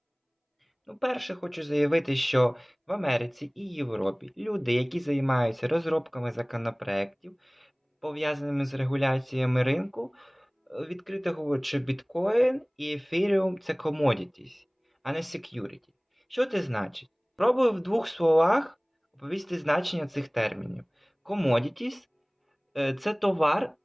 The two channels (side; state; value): both; identical; correlation 1.00